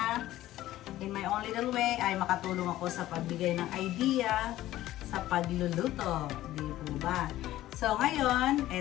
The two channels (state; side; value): quieter; right; 14.8 dB